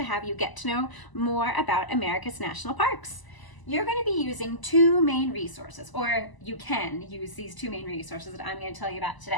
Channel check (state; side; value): late; right; 1.0 ms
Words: have you get to know more about America's national parks. You're going to be using two main resources, or you can use these two main resources that I'm going to tell you about